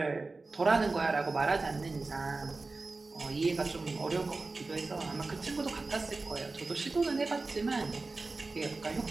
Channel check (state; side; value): quieter; left; 3.6 dB